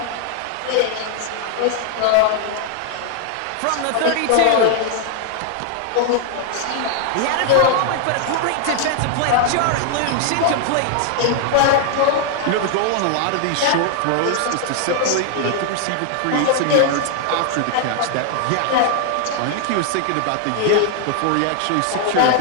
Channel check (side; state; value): both; different; correlation 0.00